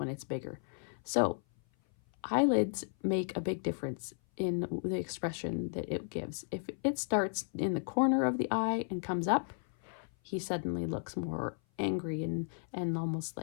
it's bigger. So eyelids make a big difference in the expression that it gives. If it starts in the corner of the eye and comes up, he suddenly looks more angry and almost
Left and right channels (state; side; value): silent; right; 55 dB below the other